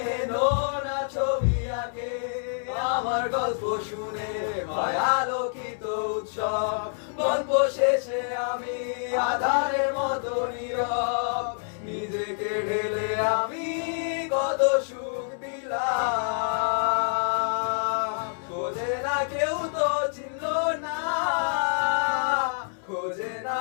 নোনা ছবি আঁকে, আমার গল্প শুনে হয় আলোকিত উৎসব, গল্প শেষে আমি আধারের মতো নীরব, নিজেকে ঢেলে আমি কত সুখ দিলাম। খোঁজে না কেউ তো চিনলো না, খোঁজে না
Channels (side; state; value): right; silent; 60 dB below the other